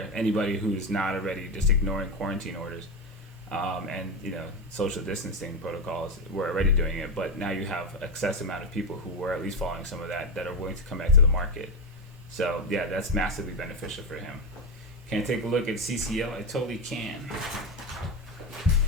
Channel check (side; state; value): both; normal; correlation 0.12